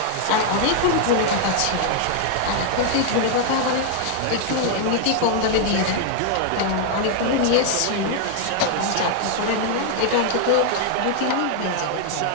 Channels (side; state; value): both; different; correlation 0.00